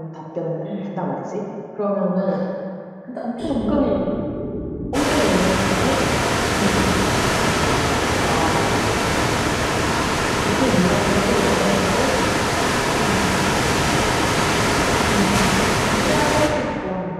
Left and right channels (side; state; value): both; identical; correlation 1.00